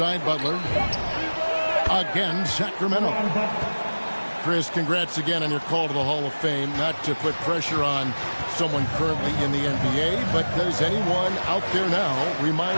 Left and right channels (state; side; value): inverted; both; correlation -1.00